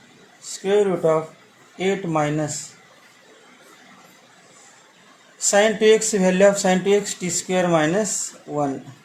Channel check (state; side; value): identical; both; correlation 1.00